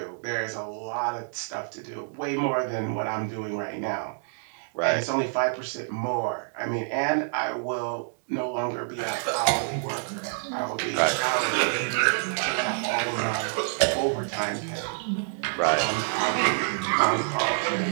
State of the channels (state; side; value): silent; left; digital silence